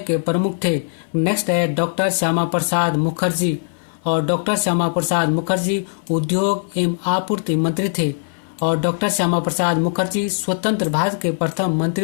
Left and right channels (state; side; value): silent; right; 59 dB below the other